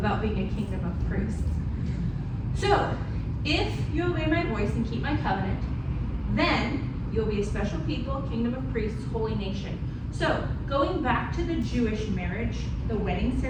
being a kingdom of priests. So, if you obey my voice and keep my covenant, then you'll be a special people, kingdom of priests, holy nation. So, going back to the Jewish marriage, the wedding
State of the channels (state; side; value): identical; both; correlation 1.00